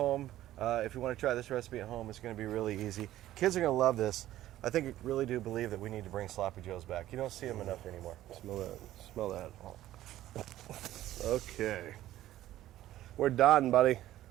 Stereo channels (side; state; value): left; quieter; 14.0 dB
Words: If you want to try this recipe at home, it's going to be really easy. Kids are going to love this. I think I really do believe that we need to bring Sloppy Joes back. You don't see them enough anymore. Smell that. Smell that. Okay. We're done, buddy.